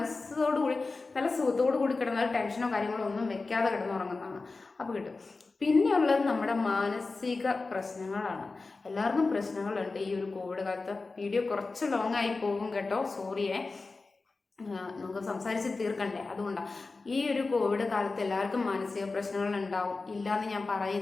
കൂടി നല്ല സുഖത്തോടു കൂടി കിടന്നാൽ ടെൻഷനോ കാര്യങ്ങളോ ഒന്നും വെക്കാതെ കിടന്നുറങ്ങുന്നതാണ്. അപ്പോൾ കിട്ടും. പിന്നെയുള്ളത് നമ്മുടെ മാനസിക പ്രശ്നങ്ങളാണ്. എല്ലാവർക്കും പ്രശ്നങ്ങളുണ്ട് ഈ ഒരു കോവിഡ് കാലത്ത്. വീഡിയോ കുറച്ച് ലോങ് ആയി പോകും കേട്ടോ, സോറിയേ. നമുക്ക് സംസാരിച്ച് തീർക്കണ്ടേ. അതുകൊണ്ടാണ് ഈ ഒരു കോവിഡ് കാലത്ത് എല്ലാവർക്കും മാനസിക പ്രശ്നങ്ങൾ ഉണ്ടാവും, ഇല്ലയെന്ന് ഞാൻ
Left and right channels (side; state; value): right; quieter; 3.8 dB